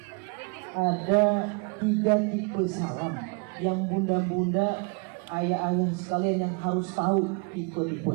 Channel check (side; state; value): left; quieter; 33.5 dB